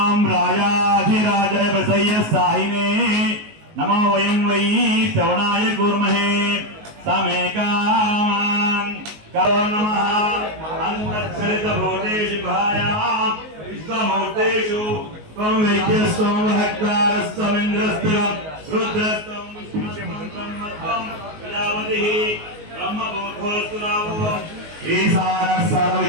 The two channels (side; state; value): left; late; 19 ms